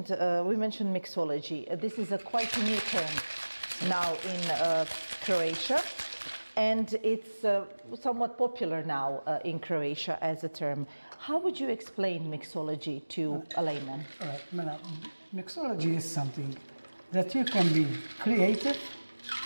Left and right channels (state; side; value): inverted; both; correlation -1.00